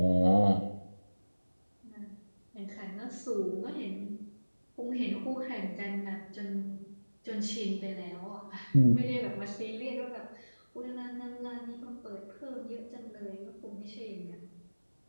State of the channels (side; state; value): both; inverted; correlation -1.00